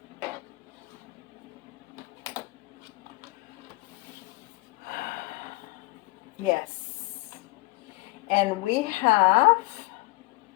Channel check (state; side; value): quieter; right; 23.3 dB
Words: Yes. And we have